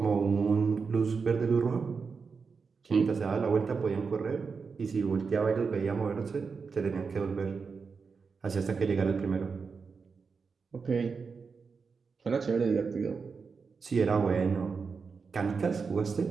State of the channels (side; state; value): left; quieter; 5.2 dB